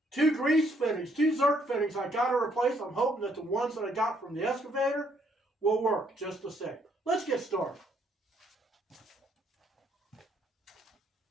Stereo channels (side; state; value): both; normal; correlation 0.69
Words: two grease fittings, two Zerk fittings I got to replace. I'm hoping that the ones that I got from the excavator will work just the same. Let's get started.